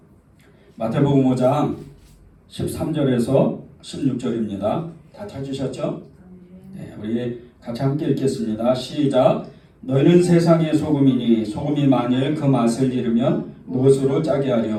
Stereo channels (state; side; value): identical; both; correlation 1.00